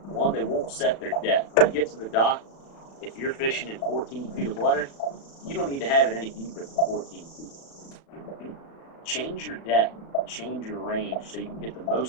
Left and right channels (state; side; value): late; right; 36 ms